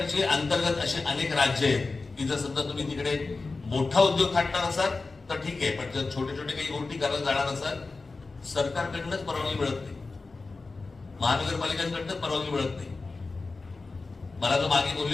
अंतर्गत असे अनेक राज्य आहेत की जर समजा तुम्ही तिकडे मोठा उद्योग थाटणार असाल तर ठीक आहे, पण जर छोटे छोटे काही गोष्टी करायला जाणार असाल सरकारकडनंच परवानगी मिळत नाही, महानगरपालिकांकडनंच परवानगी मिळत नाही. मला जो मागे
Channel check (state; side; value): quieter; right; 3.8 dB